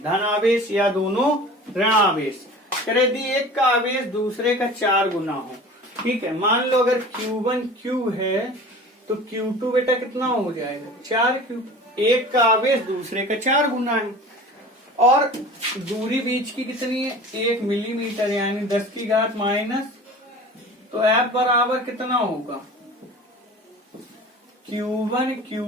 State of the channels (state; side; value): normal; both; correlation 0.39